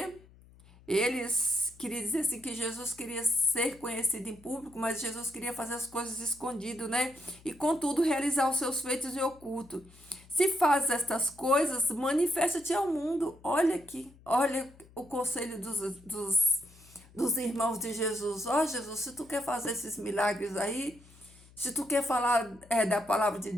Eles queriam dizer assim que Jesus queria ser conhecido em público, mas Jesus queria fazer as coisas escondido, né? E contudo realizar os seus feitos em oculto. Se faz estas coisas, manifesta-te ao mundo. Olha aqui, olha o conselho dos irmãos de Jesus. Ó, Jesus, se tu quer fazer esses milagres aí, se tu quer falar da palavra de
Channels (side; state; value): left; noise; hum, 24 dB below the sound